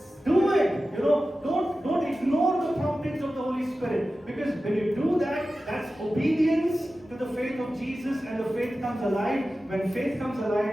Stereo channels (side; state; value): both; normal; correlation 0.94